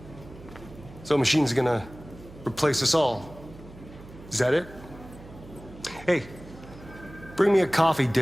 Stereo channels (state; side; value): noise; right; hum, 18 dB below the sound